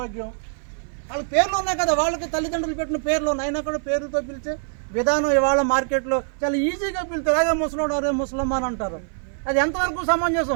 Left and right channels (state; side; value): silent; left; 56 dB below the other